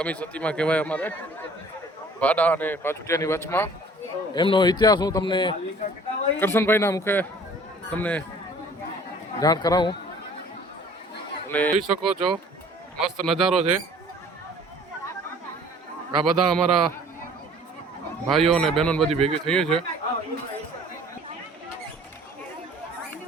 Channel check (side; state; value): both; normal; correlation 0.52